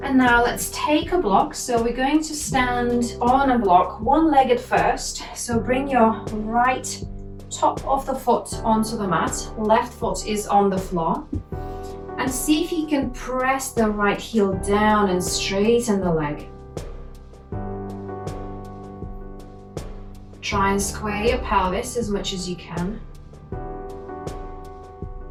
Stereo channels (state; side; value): identical; both; correlation 1.00